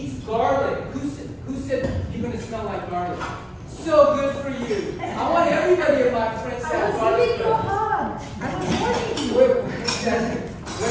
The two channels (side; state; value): both; identical; correlation 1.00